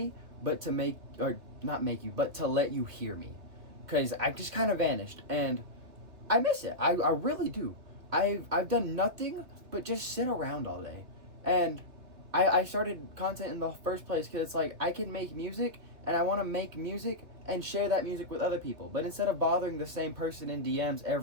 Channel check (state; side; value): late; left; 2.7 ms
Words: but to but to let you hear me. Because I just kind of vanished, and I miss it. I really do. I've done nothing but just sit around all day. And I started content in the first place because it's like I can make music and I want to make music and share that music with other people. But instead of bothering the same person in DMs